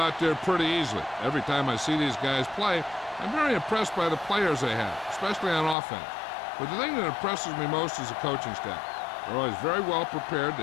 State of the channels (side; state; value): right; drops out; at 5.8 s